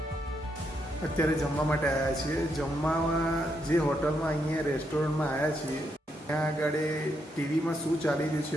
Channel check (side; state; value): both; normal; correlation 0.79